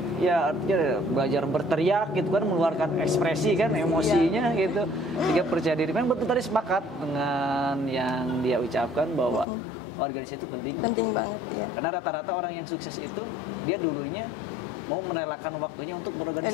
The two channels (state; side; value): drops out; right; at 9.5 s